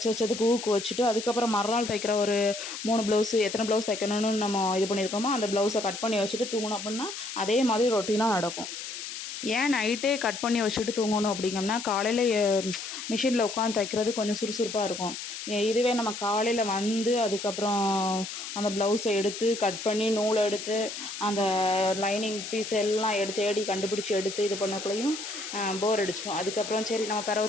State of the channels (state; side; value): noise; left; hiss, 8 dB below the sound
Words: வச்சதுக்கு ஊக்கு வச்சுட்டு, அதுக்கப்புறம் மறுநாள் தைக்கிற ஒரு 3 ப்ளவுஸு எத்தனை ப்ளவுஸ் தைக்கணும்னு நம்ம இது பண்ணியிருக்கோமோ அந்த ப்ளவுஸை கட் பண்ணி வச்சுட்டு தூங்கணும் அப்படின்னா அதே மாதிரி ரொட்டீனாக நடக்கும். ஏன் நைட்டே கட் பண்ணி வச்சுட்டு தூங்கணும் அப்படிங்கம்னா, காலையில் மிஷினில் உட்காந்து தைக்கிறது கொஞ்சம் சுறுசுறுப்பாக இருக்கும். இதுவே நம்ம காலையில் வந்து அதுக்கப்புறம் அந்த ப்ளவுஸை எடுத்து கட் பண்ணி நூலை எடுத்து அந்த லைனிங் பீஸ் எல்லாம் தேடி கண்டுபிடிச்சி எடுத்து இது பண்ணக்குள்ளேயும் போர் அடிச்சிடும். அதுக்கப்புறம் சரி நம்ம